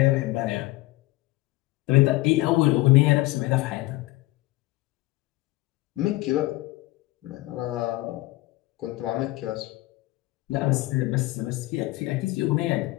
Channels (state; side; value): quieter; right; 19.4 dB